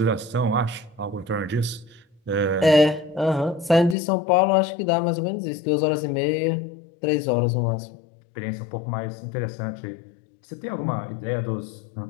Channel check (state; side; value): drops out; right; at 4.0 s